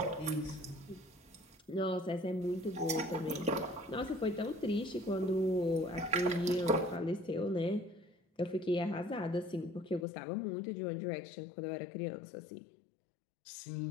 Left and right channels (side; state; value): right; drops out; at 10.1 s